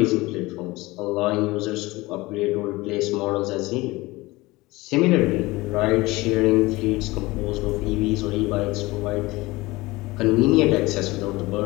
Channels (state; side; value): quieter; right; 21.0 dB